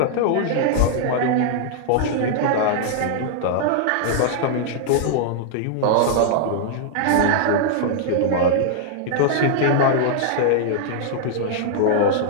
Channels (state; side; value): different; both; correlation -0.01